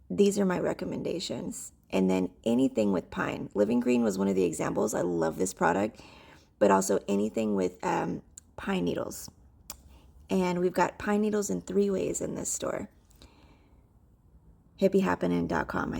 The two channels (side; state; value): both; identical; correlation 1.00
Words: these are my recommendations. And then anything with pine. Living Green was one of the examples. I love this product, but also anything with pine needles. And we've got pine needles in 3 ways in this store. HippieHappening.com.